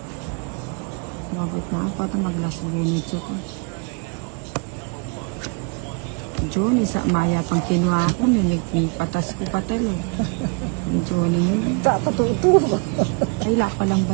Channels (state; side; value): quieter; left; 32.7 dB